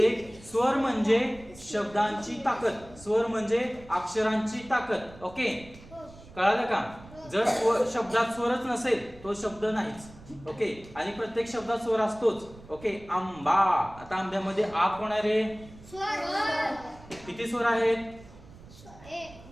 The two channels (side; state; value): right; noise; rumble, 20 dB below the sound